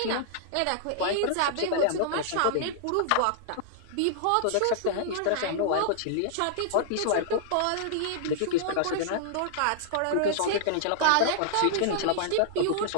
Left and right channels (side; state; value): both; different; correlation -0.01